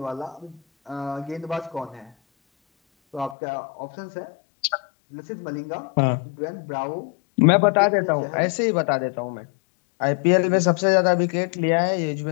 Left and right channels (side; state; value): right; drops out; at 3.4 s